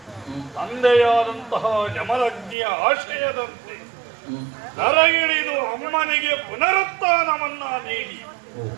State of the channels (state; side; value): drops out; left; at 2.6 s